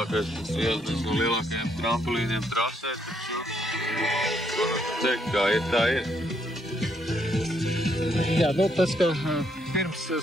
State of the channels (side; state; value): both; normal; correlation 0.73